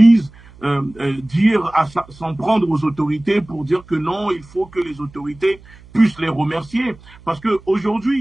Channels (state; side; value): noise; right; hum, 23 dB below the sound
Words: s'en prendre aux autorités pour dire que non, il faut que les autorités puissent les remercier. Parce